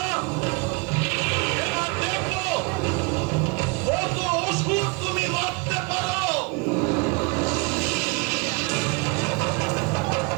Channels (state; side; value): quieter; left; 28.8 dB